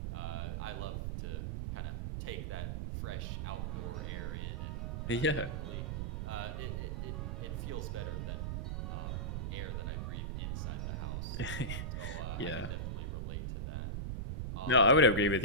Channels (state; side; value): noise; right; rumble, 1 dB below the sound